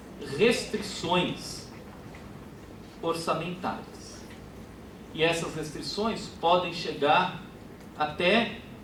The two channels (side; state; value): both; identical; correlation 1.00